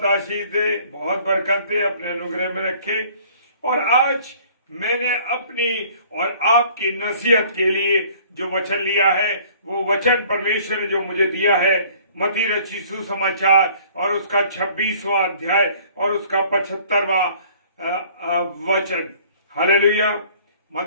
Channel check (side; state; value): both; inverted; correlation -0.54